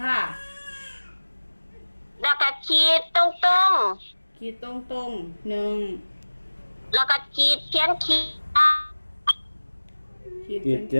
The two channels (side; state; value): both; inverted; correlation -1.00